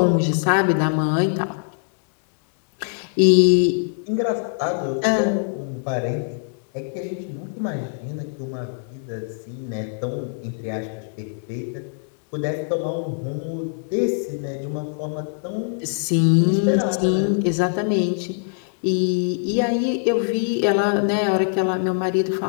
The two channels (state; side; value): silent; right; digital silence